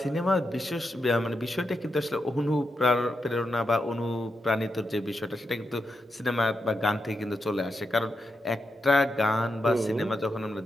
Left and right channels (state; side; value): normal; both; correlation 0.85